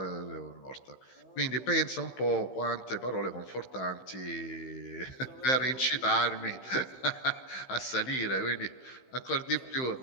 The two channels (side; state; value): right; late; 15 ms